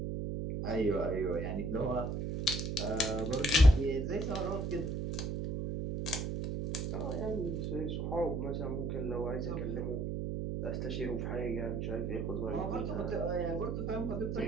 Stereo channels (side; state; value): right; noise; hum, 2 dB below the sound